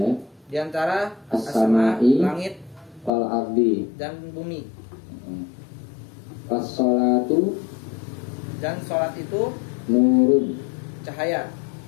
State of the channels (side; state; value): right; drops out; at 3.1 s